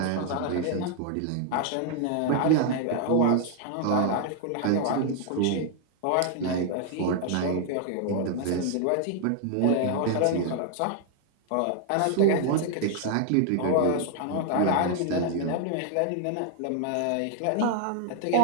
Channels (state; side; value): different; both; correlation 0.00